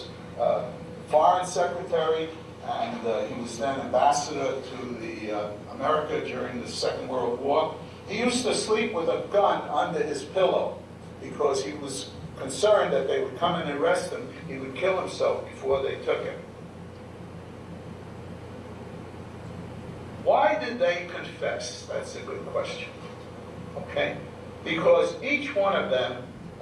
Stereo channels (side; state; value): both; identical; correlation 1.00